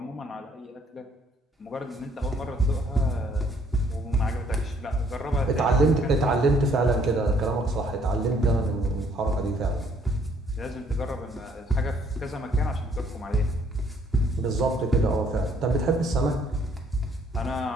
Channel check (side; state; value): both; normal; correlation 0.64